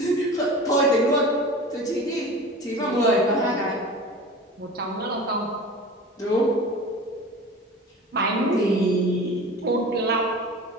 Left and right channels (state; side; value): normal; both; correlation 0.36